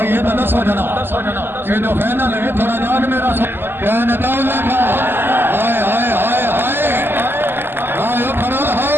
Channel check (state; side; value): late; left; 0.10 ms